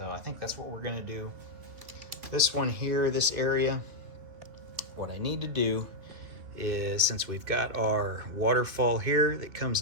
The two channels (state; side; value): late; left; 2.9 ms